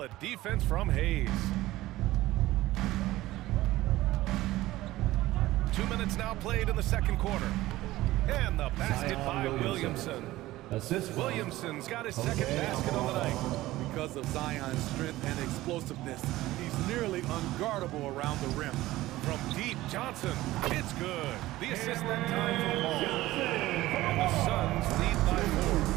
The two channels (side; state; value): left; quieter; 16.9 dB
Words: defense from Hayes. 2 minutes now played in the second quarter. And the basket by Williamson. Williamson's got his second basket on the night. Because of Zion's strength and explosiveness, he's nearly unguardable around the rim. From deep, Johnson. It's good. The assist that time from Paul. And the Suns lead by 4.